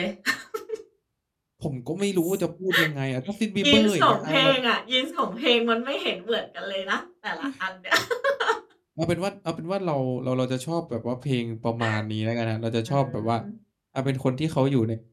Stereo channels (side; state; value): both; identical; correlation 1.00